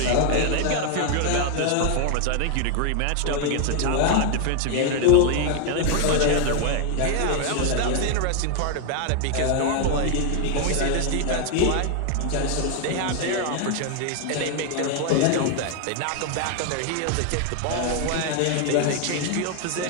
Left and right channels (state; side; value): different; both; correlation 0.01